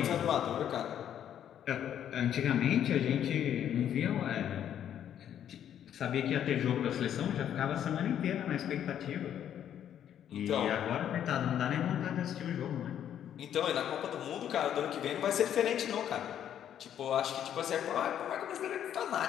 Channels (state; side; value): quieter; right; 10.0 dB